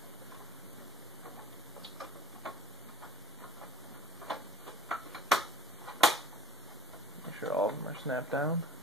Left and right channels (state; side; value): normal; both; correlation 0.50